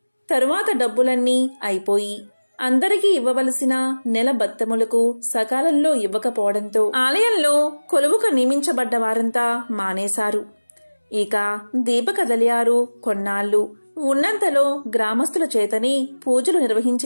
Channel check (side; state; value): both; inverted; correlation -1.00